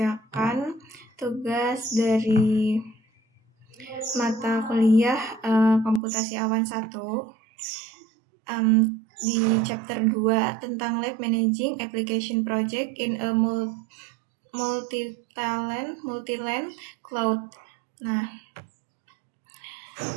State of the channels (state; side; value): drops out; left; at 6.0 s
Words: tugas dari mata kuliah Komputasi Awan 1 di chapter 2 tentang Lab Managing Application Project in a Multi-Land Cloud. Nah,